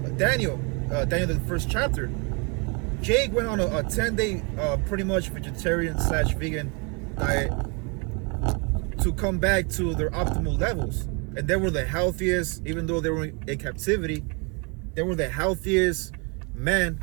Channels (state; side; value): quieter; left; 32.9 dB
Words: Daniel, the first chapter. Jake went on a 10-day, pretty much vegetarian/vegan diet to come back to their optimal levels, and they were the healthiest. Even though they were in captivity, they were the healthiest men